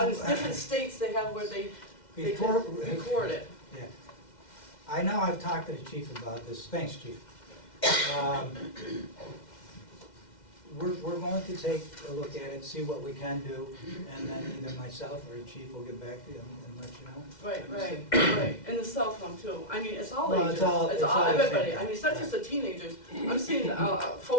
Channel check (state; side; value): late; right; 2.1 ms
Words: different states, they have where they Before, can record it. yeah. I know I've talked to the chief about this, thanks, chief. We're going to take a look at it, see what we can do, and then either myself or the chief will get back to you and let you know. Right. And the cell phone too. I mean, it's all Well, ages. it's all the everybody. same. I mean, it's not just the teenagers. I'm seeing